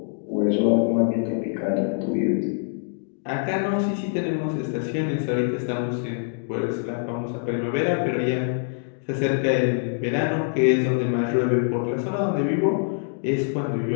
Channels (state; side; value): silent; right; digital silence